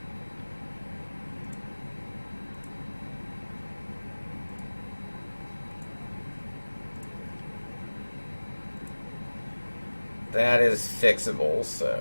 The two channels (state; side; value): inverted; both; correlation -1.00